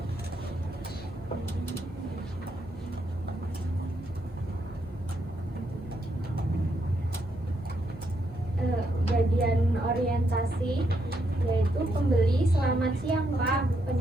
Bagian orientasi yaitu pembeli selamat siang Pak,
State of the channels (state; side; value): normal; both; correlation 0.78